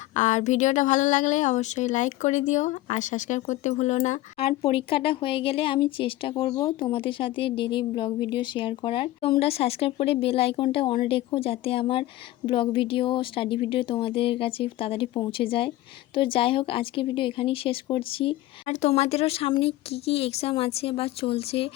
আর ভিডিওটা ভালো লাগলে অবশ্যই লাইক করে দিও আর সাবস্ক্রাইব করতে ভুলো না। আর পরীক্ষাটা হয়ে গেলে আমি চেষ্টা করব তোমাদের সাথে ডেইলি ব্লগ ভিডিও শেয়ার করার। তোমরা সাবস্ক্রাইব করে বেল আইকনটা অন রেখো, যাতে আমার ব্লগ ভিডিও, স্টাডি ভিডিও তোমাদের কাছে তাড়াতাড়ি পৌঁছে যায়। তো যাই হোক, আজকের ভিডিও এখানেই শেষ করছি। আর তোমাদেরও সামনে কি এক্সাম আছে বা চলছে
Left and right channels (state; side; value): quieter; right; 16.5 dB